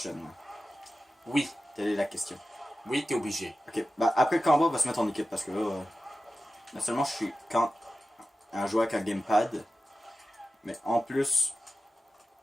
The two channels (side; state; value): both; normal; correlation 0.93